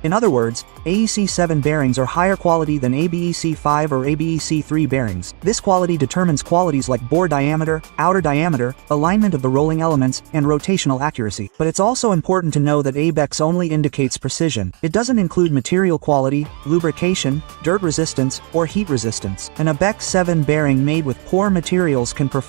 In other words, AEC 7 bearings are higher quality than ABEC 5 or ABEC 3 bearings. This quality determines qualities like bore diameter, outer diameter, alignment of the rolling elements, and rotational accuracy. But it's also important to know that ABEC only indicates precision. It doesn't include material quality, lubrication, dirt resistance, or heat resistance. An ABEC 7 bearing made with poor materials can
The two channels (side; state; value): left; quieter; 38.8 dB